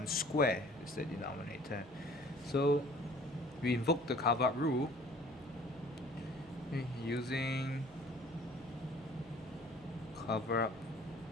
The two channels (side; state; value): right; noise; hum, 24 dB below the sound